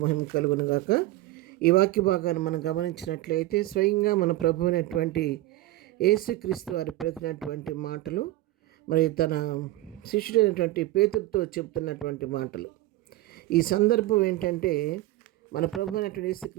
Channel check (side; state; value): left; quieter; 16.3 dB